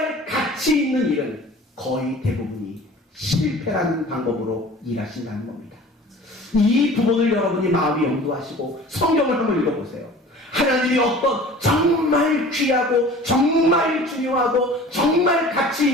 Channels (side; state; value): both; normal; correlation 0.44